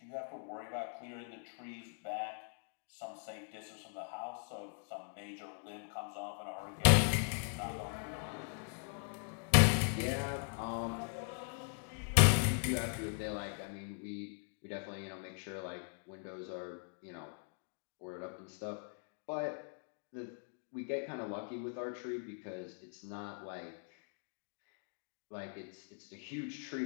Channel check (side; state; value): right; silent; 51 dB below the other